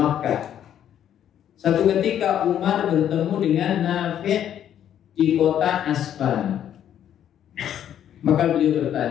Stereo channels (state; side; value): quieter; right; 10.2 dB